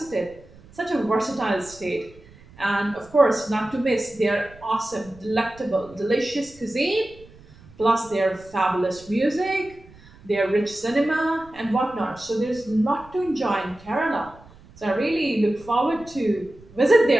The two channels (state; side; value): noise; right; rumble, 24 dB below the sound